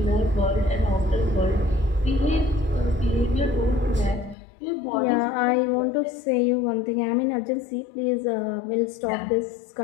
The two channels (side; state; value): right; drops out; at 4.4 s